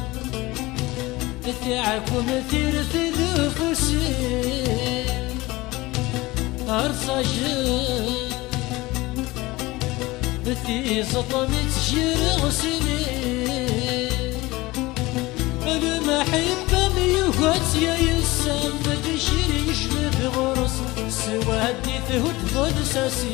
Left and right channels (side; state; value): right; quieter; 20.6 dB